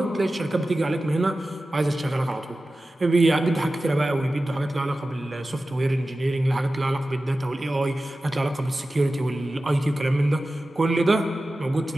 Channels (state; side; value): normal; both; correlation 0.95